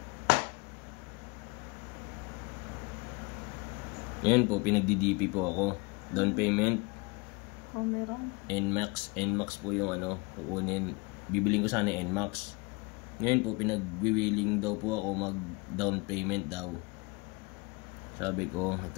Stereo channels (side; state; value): right; quieter; 27.5 dB